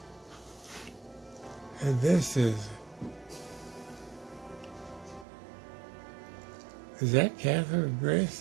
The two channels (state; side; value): drops out; left; at 5.2 s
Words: And this is that Catherine